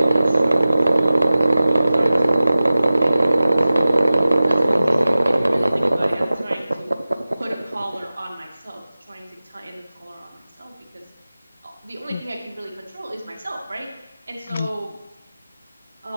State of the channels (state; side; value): inverted; both; correlation -0.96